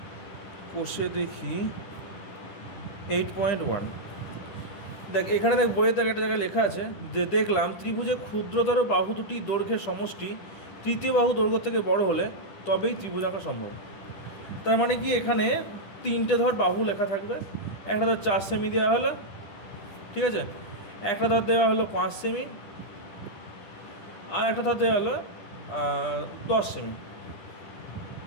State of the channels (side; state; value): right; late; 10 ms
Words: কোষে দেখি 8.1, দেখ এখানে দেখ বইয়ের দেখ একটা জায়গায় লেখা আছে যে দেখলাম ত্রিভুজে ক্ষুদ্রতর বাহু দুটি দৈর্ঘ্যের সমষ্টি তৃতীয় বাহু দৈর্ঘ্য থেকে বড় হলে তবেই ত্রিভুজ আঁকা সম্ভব। তার মানে কি, এখানে 3টে ধর বাহু লেখা থাকবে। একটা ধর 4 সেমি দেওয়া হলো, ঠিক আছে, একটা ধর দেওয়া হলো 5 সেমি, আর একটা ধর দেওয়া হলো 10 সেমি,